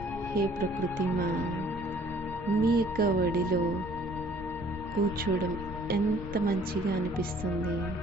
హే ప్రకృతి మా, మీ యొక్క ఒడిలో కూర్చోవడం ఎంత మంచిగా అనిపిస్తుంది.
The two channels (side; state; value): both; normal; correlation 0.57